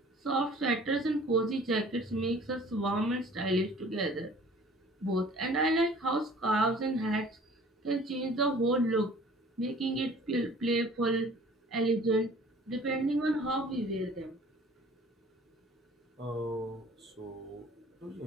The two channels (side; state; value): both; normal; correlation 0.50